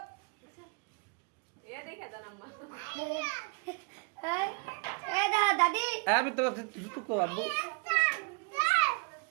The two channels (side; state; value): left; quieter; 32.6 dB